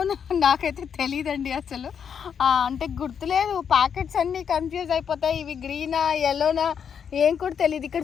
నాకైతే తెలియదండి అసలు. అంటే గుర్తులేదు, ప్యాకెట్స్ అన్నీ కన్ఫ్యూజ్ అయిపోతాయి, ఇవి గ్రీనా ఎల్లోనా ఏం కూడా తెలియదు. ఇక్కడ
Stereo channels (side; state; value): right; quieter; 7.5 dB